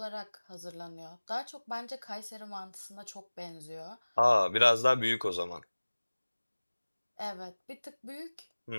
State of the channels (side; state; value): both; inverted; correlation -1.00